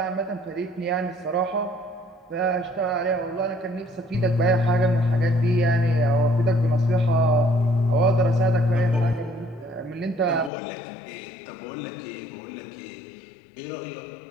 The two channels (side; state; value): right; drops out; at 10.5 s